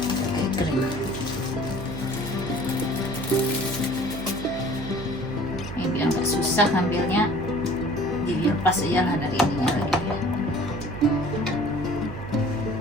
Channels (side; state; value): right; noise; hum, 10 dB below the sound